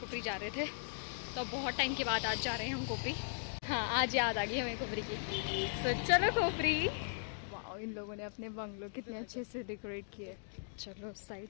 जा रहे थे, तो बहुत टाइम के बाद आज जा रहे हैं हम कोपरी। हाँ आज याद आ गई हमें कोपरी की। तो चलो कोपरी। वाह इन लोगों ने अपने बंगलो कितने अच्छे से डेकोरेट किए। चलो उस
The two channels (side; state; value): right; silent; digital silence